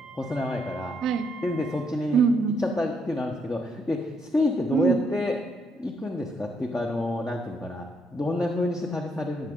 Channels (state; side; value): normal; both; correlation 0.74